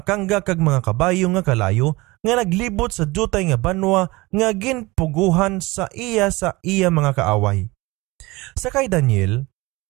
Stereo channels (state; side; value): quieter; left; 22.2 dB